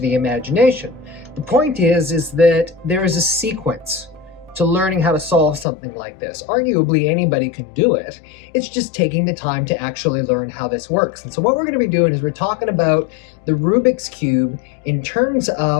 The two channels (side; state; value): right; drops out; at 5.7 s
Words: the imagination. The point is that there is a sequence to learning how to solve something like this. Arguably, anybody can do it. It's just taking the time to actually learn how this works. And so what we're going to be doing is we're talking about the Rubik's Cube in terms